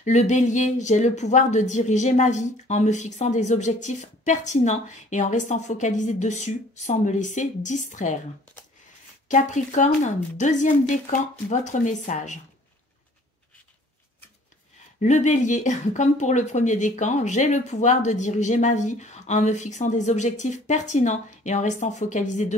Le bélier, j'ai le pouvoir de diriger ma vie en me fixant des objectifs pertinents et en restant focalisé dessus sans me laisser distraire. Capricorne, deuxième décan, votre message. Le bélier, comme pour le premier décan, j'ai le pouvoir de diriger ma vie en me fixant des objectifs pertinents et en restant focalisé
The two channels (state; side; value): normal; both; correlation 0.54